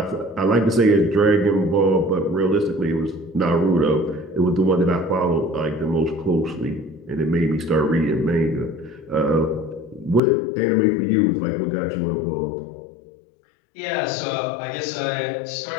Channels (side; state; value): right; drops out; at 10.2 s